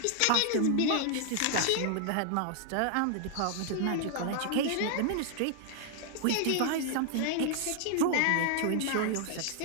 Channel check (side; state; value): both; different; correlation 0.00